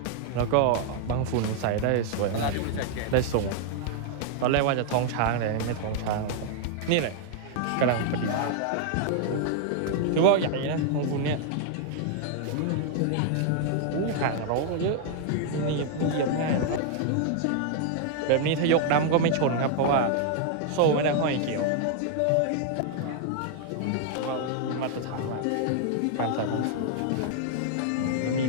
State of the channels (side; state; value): both; different; correlation 0.00